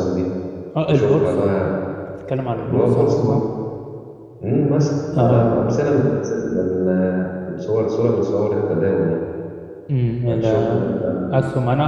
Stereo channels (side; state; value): both; identical; correlation 1.00